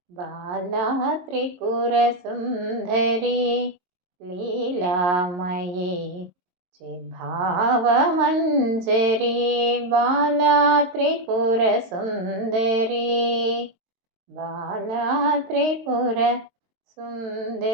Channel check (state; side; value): late; left; 22 ms